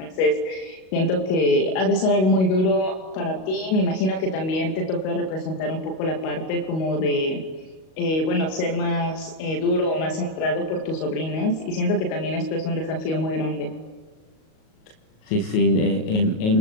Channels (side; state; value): right; late; 38 ms